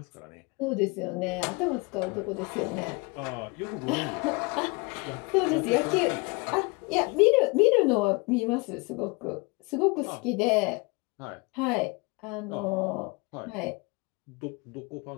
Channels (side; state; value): right; quieter; 27.7 dB